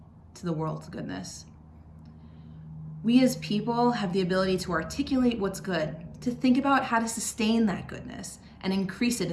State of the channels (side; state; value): both; identical; correlation 1.00